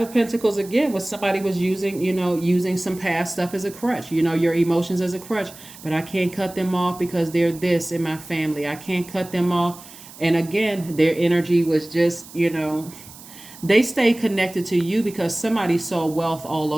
of Pentacles again was somebody was using some past stuff as a crutch, your emotions as a crutch. But I can't cut them off because they're this in my family. I can't cut them off. And again, their energy was just, they stay connected to you because somebody saw wealth all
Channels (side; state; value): right; noise; hiss, 18 dB below the sound